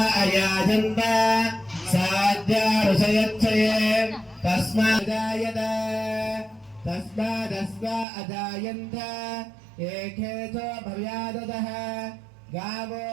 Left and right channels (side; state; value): left; drops out; at 8.1 s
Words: अयाजन्त साध्यारुषयच्छये तस्मादस्वा अजायन्त एके च भव्यादतः गावो